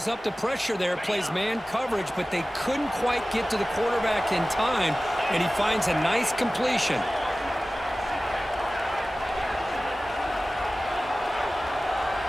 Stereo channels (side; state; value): both; normal; correlation 0.97